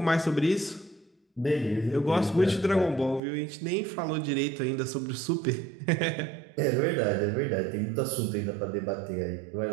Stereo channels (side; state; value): left; drops out; at 3.2 s